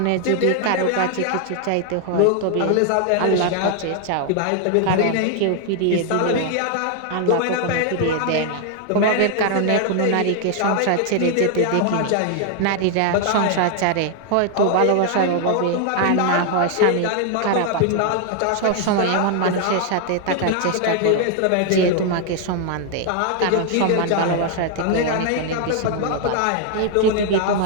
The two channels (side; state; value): both; different; correlation 0.00